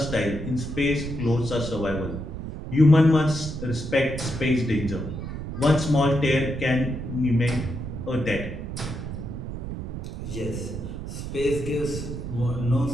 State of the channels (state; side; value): noise; right; rumble, 7 dB below the sound